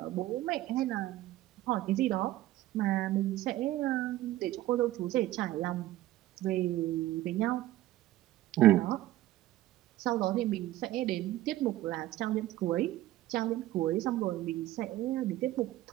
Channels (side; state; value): left; quieter; 15.4 dB